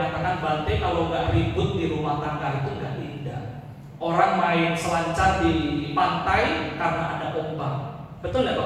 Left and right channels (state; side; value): identical; both; correlation 1.00